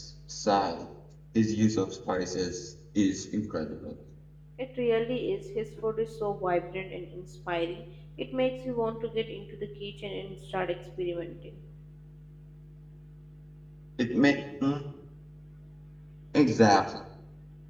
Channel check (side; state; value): both; identical; correlation 1.00